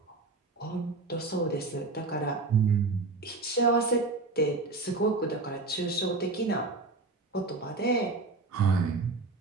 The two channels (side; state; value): left; quieter; 3.5 dB